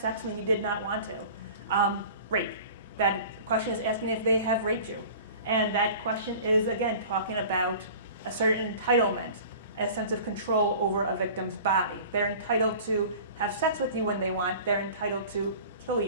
when you did not want to? Rape. That question is asking if they have raped you. And that question is, again, talking about a certain entitlement, a sense of control over a victim's body. They're entitled to have sex with you when they want. They're entitled to kill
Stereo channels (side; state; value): both; inverted; correlation -0.42